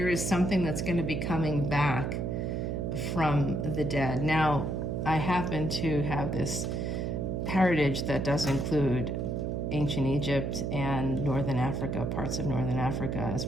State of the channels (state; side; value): noise; right; hum, 1 dB below the sound